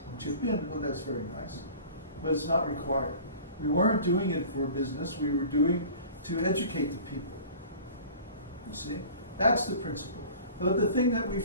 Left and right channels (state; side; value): inverted; both; correlation -0.42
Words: chip in, well, that's very nice. But it's not required. We weren't doing it for business, we were doing to educate the people. You see? That's the principle. But the thing that we